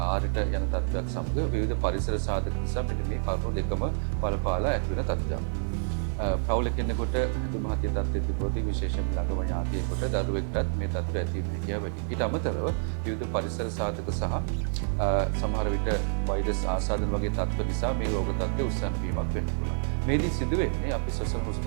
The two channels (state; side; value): silent; left; digital silence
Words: ආරයට යන තත්ත්වයක් සමග විවිධ පරිසර සාධක නිසා මෙන්න මේ කරුණු දෙකම බලපාලා ඇති වෙන තත්ත්වයක්. පවුල කෙනෙකුට ඇදුම හතිය තත්ත්වයේ තිබුණොත් විශේෂයෙන්ම ළඟම ඥාතියෙකුට දරුවෙක්ටත් මේ තත්ත්වය ඇති වෙන හැකියාව වැඩි. ඊට අමතරව විවිධ පරිසර සාධක සහ සමහර විට වෛරස් ආසාදන වගේ තත්ත්ව නිසා මේ රෝග තත්ත්වය උස්සන් වීමක් වෙන්න පුළුවන්. මේදී සිදුවෙන්නේ අපි ශ්වසන